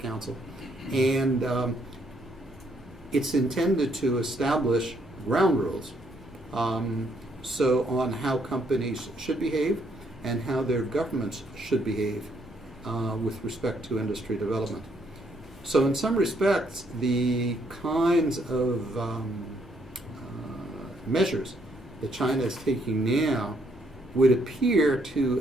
And it's intended to establish ground rules so on how companies should behave and how their governments should behave with respect to industry development. So in some respects, the kinds of measures that China is taking now would appear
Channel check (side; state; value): both; normal; correlation 0.71